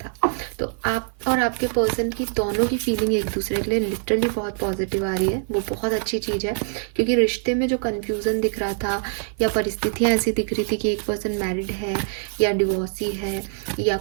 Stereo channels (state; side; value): silent; left; 55 dB below the other